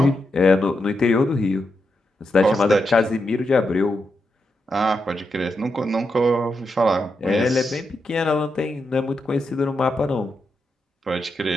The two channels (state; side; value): normal; both; correlation 0.85